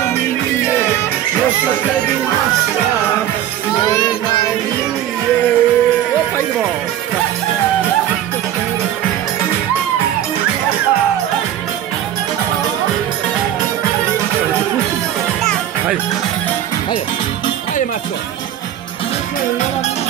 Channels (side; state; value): left; quieter; 11.5 dB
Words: mi nije, još o tebi maštam, moje najmilije. Opa, idemo! Hajde, hajde, hajde Mačko!